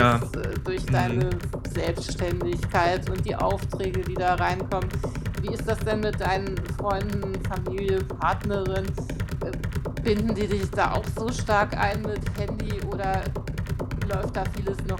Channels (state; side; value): identical; both; correlation 1.00